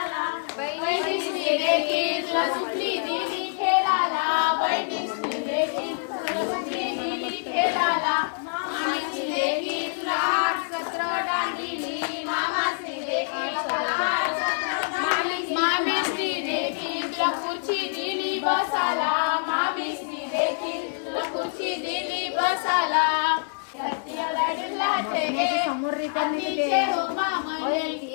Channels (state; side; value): silent; right; digital silence